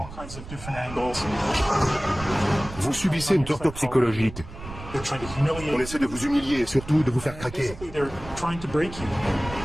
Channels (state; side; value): noise; right; rumble, 13 dB below the sound